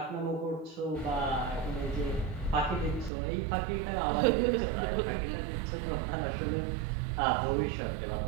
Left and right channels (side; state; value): left; drops out; at 3.1 s